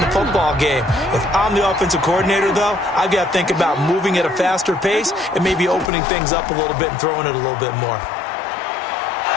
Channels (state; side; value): drops out; right; at 5.9 s